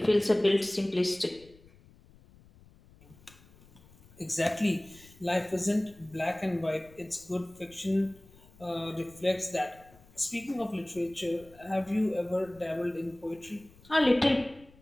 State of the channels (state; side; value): noise; left; rumble, 25 dB below the sound